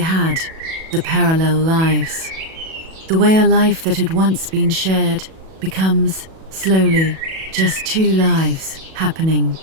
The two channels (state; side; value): late; left; 37 ms